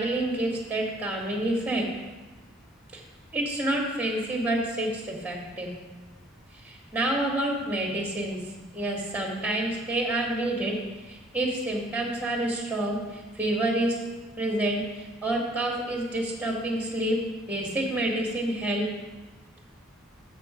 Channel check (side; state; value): both; normal; correlation 0.59